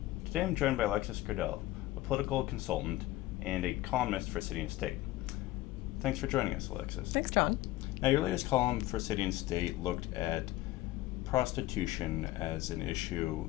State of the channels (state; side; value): quieter; right; 16.7 dB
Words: Today I'm joined by Alexis Grenell, a political consultant and a columnist for City and State. Thanks for joining us, Alexis. Thanks, John. Now, your latest column for City and State looked at prostitution as an issue